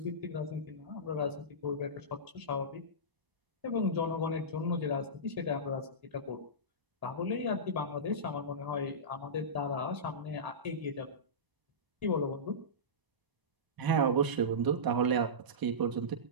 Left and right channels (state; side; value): late; left; 1.0 ms